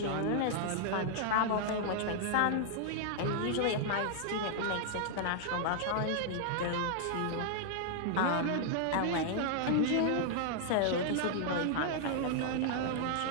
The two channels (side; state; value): both; different; correlation -0.01